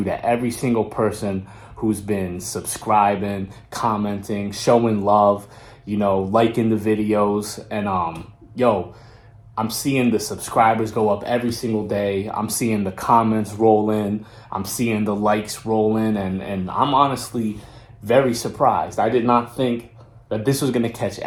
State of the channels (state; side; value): identical; both; correlation 1.00